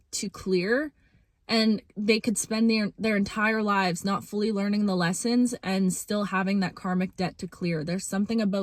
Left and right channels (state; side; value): identical; both; correlation 1.00